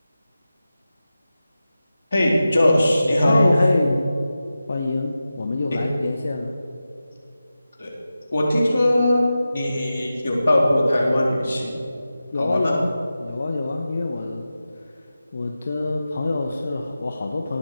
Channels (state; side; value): inverted; both; correlation -0.93